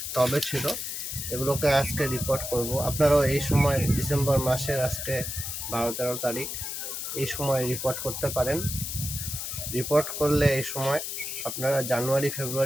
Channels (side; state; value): left; noise; hiss, 5 dB below the sound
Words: টবে ছিল। এগুলোকে আজকে রিপোর্ট করব। আপনারাও এই সময় ডিসেম্বর মাসের আজকে 12-13 তারিখ এই সময় রিপোর্ট করতে পারেন। রিপোর্ট করলে এই সময় আপনারা জানুয়ারি